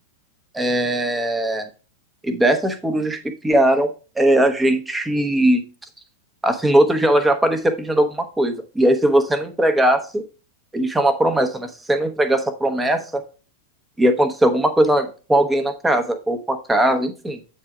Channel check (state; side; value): normal; both; correlation 0.79